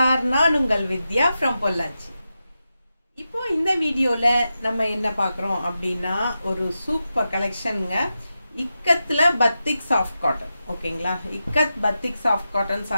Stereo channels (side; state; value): both; inverted; correlation -0.90